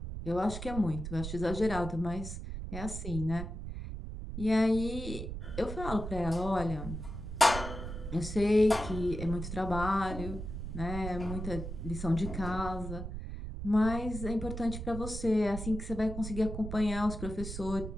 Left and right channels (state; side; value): noise; right; rumble, 7 dB below the sound